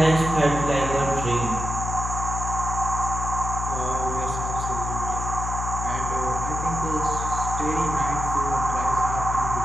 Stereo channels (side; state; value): left; noise; hum, 4 dB below the sound